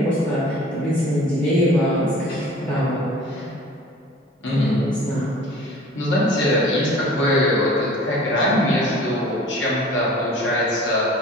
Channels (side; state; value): both; normal; correlation 0.45